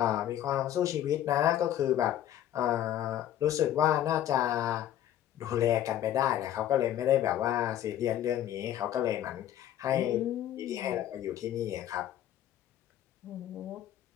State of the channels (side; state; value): right; quieter; 11.7 dB